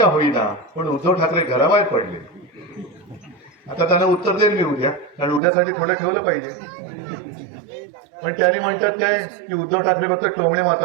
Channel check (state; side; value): drops out; left; at 5.4 s